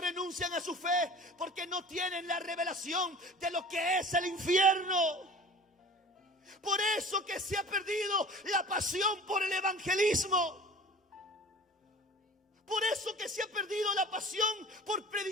a su fe? Porque no tienen la revelación de lo que es el infierno. Por eso que se ha perdido la pasión por el evangelismo. Por eso que se ha perdido la pasión por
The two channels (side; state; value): both; normal; correlation 0.42